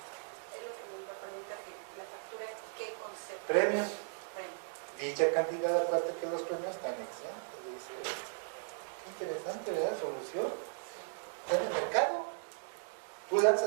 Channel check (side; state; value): left; silent; digital silence